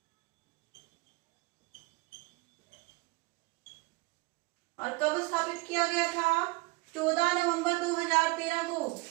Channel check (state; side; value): quieter; left; 24.2 dB